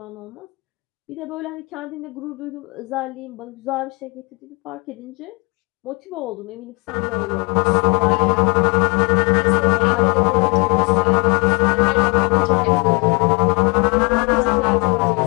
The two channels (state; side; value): quieter; right; 29.6 dB